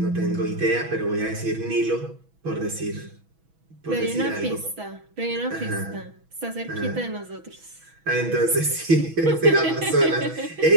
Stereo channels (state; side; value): late; left; 6.1 ms